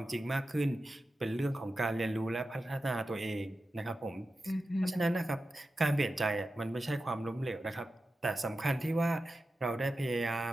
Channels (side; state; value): both; normal; correlation 0.92